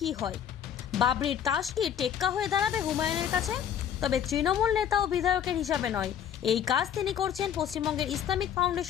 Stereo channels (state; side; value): quieter; right; 9.2 dB